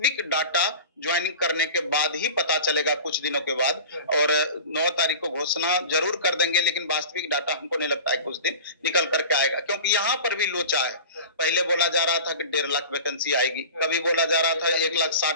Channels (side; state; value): both; inverted; correlation -0.37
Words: डाटा ज्वाइनिंग करने के बाद ही पता चलेगा कुछ दिनों के बाद। और 9 तारीख को घोषणा जरूर कर देंगे, लेकिन वास्तविक डाटा हमको नहीं लगता है कुछ दिन निकल करके आएगा, क्योंकि यहाँ पर भी लोचा है। पहले बोला जा रहा था कि 1.5 लाख वैकेंसी आएगी, कभी बोला जा रहा था